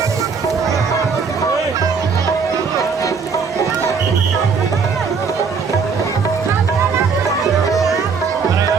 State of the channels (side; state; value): left; quieter; 5.4 dB